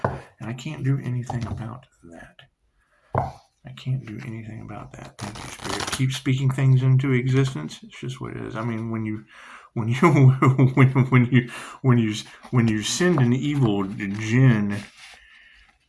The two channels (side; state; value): both; identical; correlation 1.00